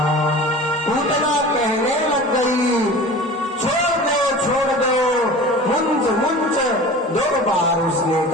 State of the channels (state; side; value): normal; both; correlation 0.38